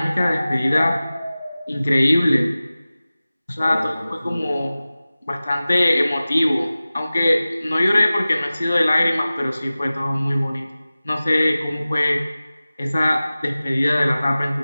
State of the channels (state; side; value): inverted; both; correlation -0.97